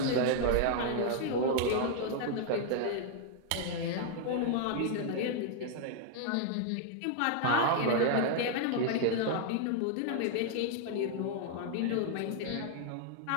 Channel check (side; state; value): both; different; correlation 0.00